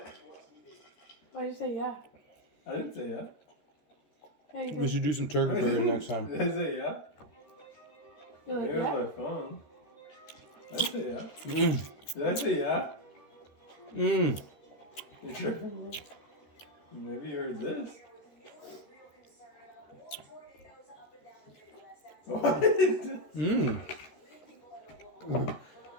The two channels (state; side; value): late; right; 13 ms